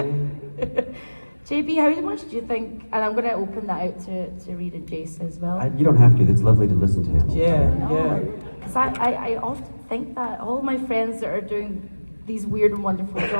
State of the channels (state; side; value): inverted; both; correlation -1.00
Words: JB, how much do you think, and I'm going to open that out to Reed and Jace as well. You don't have to. It's lovely to listen to him. Yeah. Because I often think that all of my friends that are doing these weird and wonderful